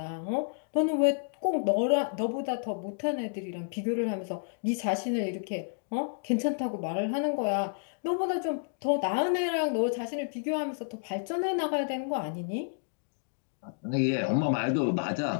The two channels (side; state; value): right; silent; digital silence